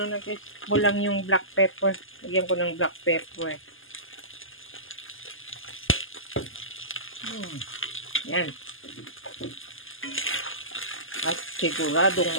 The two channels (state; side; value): late; right; 0.59 ms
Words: kulang yung black pepper. Lagyan ko ng black pepper. Yan. At siguradong